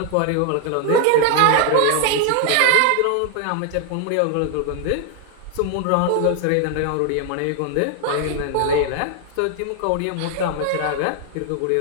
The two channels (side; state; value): both; different; correlation 0.00